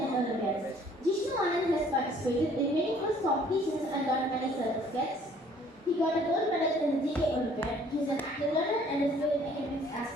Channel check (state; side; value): normal; both; correlation 0.57